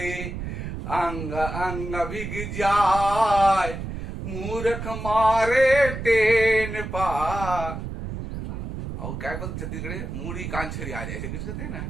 अंग अंग भिग जाए, मूर्ख मारे टेन पार। और क्या बोलते छत्तीसगढ़ी, मूड़ी कान छरी आ जाए, ऐसे कुछ कहते हैं ना।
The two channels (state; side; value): noise; right; rumble, 6 dB below the sound